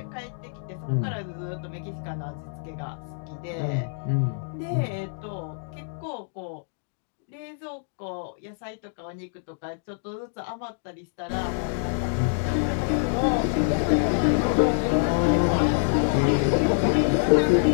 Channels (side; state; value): right; silent; digital silence